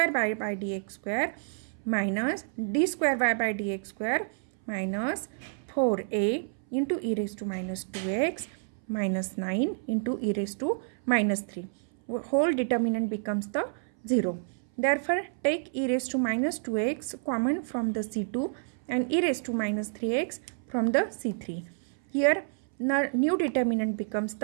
y by dx square minus d square y by dx square minus 4a into e raised to minus 2x minus 9 into e raised to minus 3. Whole determinant becomes the 0. Therefore, take e raised to minus 2x common from the C2 and e raised to minus 3x from the C3. Here, new determinant becomes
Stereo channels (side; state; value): left; silent; 58 dB below the other